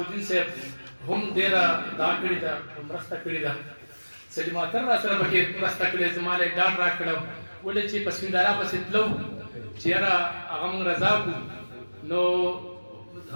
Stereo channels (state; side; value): inverted; both; correlation -1.00